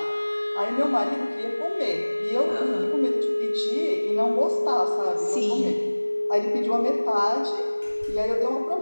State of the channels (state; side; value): inverted; both; correlation -1.00